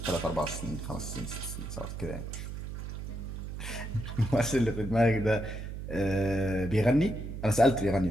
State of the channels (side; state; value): right; noise; hum, 7 dB below the sound